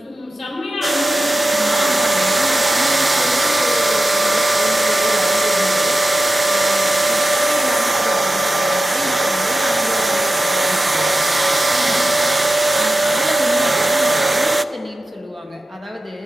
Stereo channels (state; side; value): normal; both; correlation 0.93